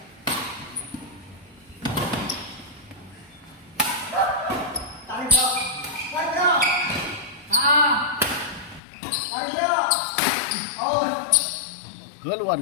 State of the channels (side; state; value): right; drops out; at 8.8 s